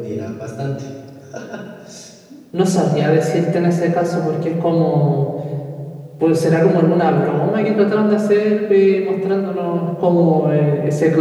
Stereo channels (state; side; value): identical; both; correlation 1.00